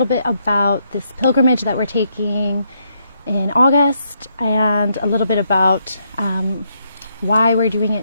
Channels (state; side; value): inverted; both; correlation -0.76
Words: bit about this pilgrimage that we're taking in August, and a little bit about why we're doing